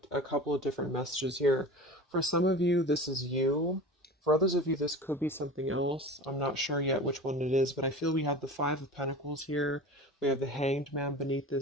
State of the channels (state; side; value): normal; both; correlation 0.35